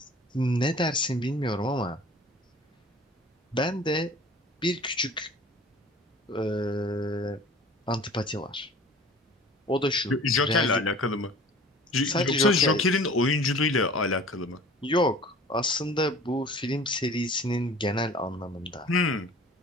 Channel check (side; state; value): both; normal; correlation 0.45